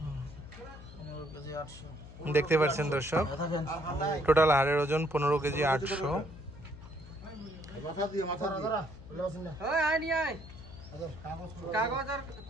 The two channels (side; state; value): left; noise; hum, 15 dB below the sound